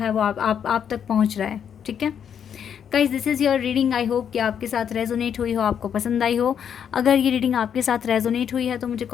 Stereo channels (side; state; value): right; quieter; 8.3 dB